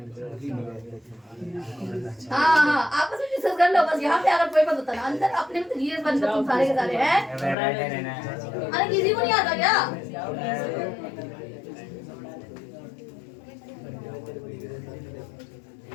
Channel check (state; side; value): drops out; right; at 7.6 s